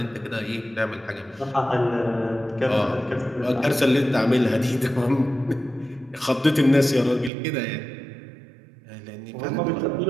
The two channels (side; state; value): left; drops out; at 7.3 s